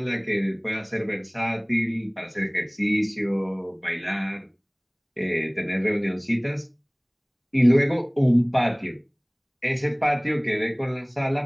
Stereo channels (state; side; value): identical; both; correlation 1.00